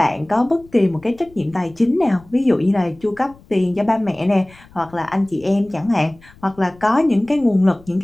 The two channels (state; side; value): noise; left; rumble, 26 dB below the sound